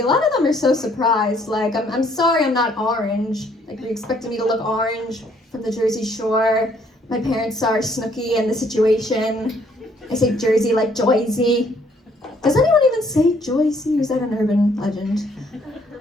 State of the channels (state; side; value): normal; both; correlation 0.65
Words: a lot of them are so surprised. Like, I'm sorry I'm not orange. Like, you expected me to look orange from the Jersey Shore. My parents are Snooki and The Situation. I say Jersey like Joyzy. Does anyone even say Joyzy? Or is that an urban legend?